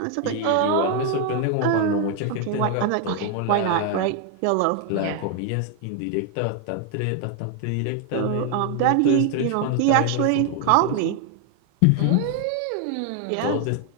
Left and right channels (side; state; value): both; different; correlation 0.00